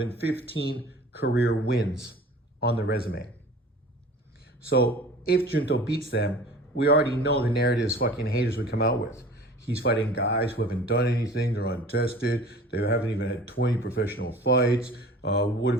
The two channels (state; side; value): normal; both; correlation 0.43